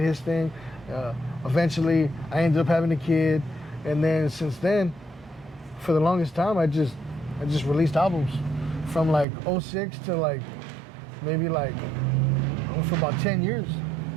his thing. Eventually, I ended up having a kid. And then since then, for the longest time, I just released albums from like 06 to maybe for about 10 years.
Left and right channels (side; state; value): left; drops out; at 9.2 s